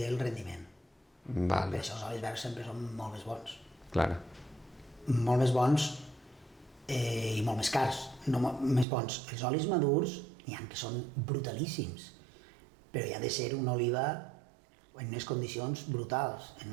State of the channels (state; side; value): drops out; left; at 8.8 s